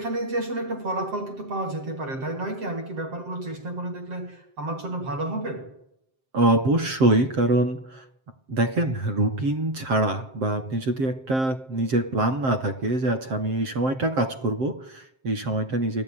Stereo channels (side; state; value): left; late; 7.6 ms